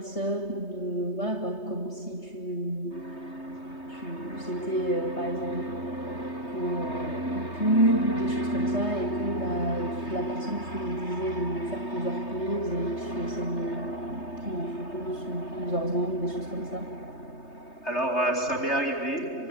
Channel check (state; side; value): late; right; 3.3 ms